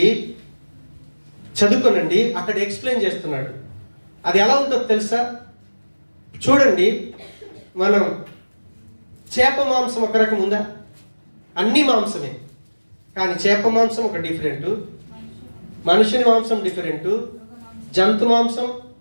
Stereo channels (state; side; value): inverted; both; correlation -1.00